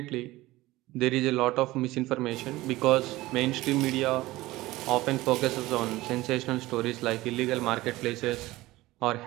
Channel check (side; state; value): left; quieter; 18.4 dB